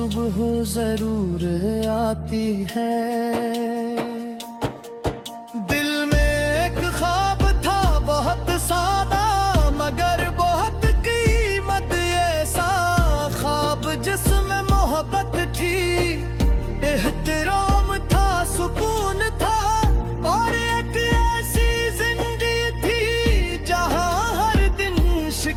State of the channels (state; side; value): identical; both; correlation 1.00